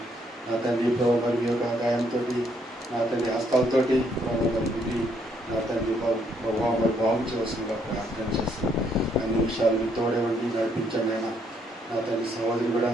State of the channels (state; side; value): normal; both; correlation 0.71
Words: నా తండ్రి ప్రభావ మరి మీ యొక్క గాయంతో నా తండ్రి హస్తాలతోటి ప్రభావ మరి విధి నా తండ్రి ప్రభావ మరి భావించవలసిందిగా ప్రార్థన చేస్తాం. అన్ని విషయాలు మీ తోడేవండి నడిపించండి అయినా. నా తండ్రి సహోదరి కూడా